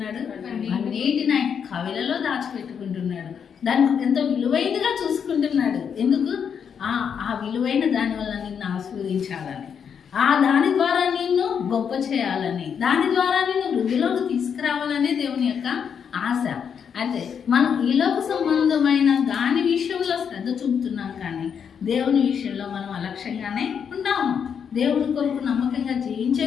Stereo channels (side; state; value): right; quieter; 7.3 dB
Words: అన్నిటిని ఆయన కవిలలో దాచిపెట్టుకుంటున్నాడు. దానికి ఎంతో విలువైనదిగా చూసుకుంటున్నాడు. ఎందుకు? ఆ విలువైన దాని వల్ల నిన్ను ఆశీర్వదించాలని, దాని ద్వారా నిన్ను గొప్ప చేయాలని, దాని ద్వారా నిన్ను వృద్ధిలోకి తీసుకురావాలనే దేవుని యొక్క ఆశ. అయితే మనం ఈలోక సంబంధమైన దాని విషయంలో శ్రద్ధ చూపుతున్నాం, కానీ దేవుని విషయంలో మనం అలక్ష్యంగానే ఉంటాము. దేవుని కొరకు నమ్మకంగా జీవించే